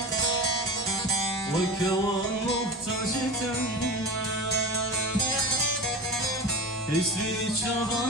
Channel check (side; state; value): both; normal; correlation 0.29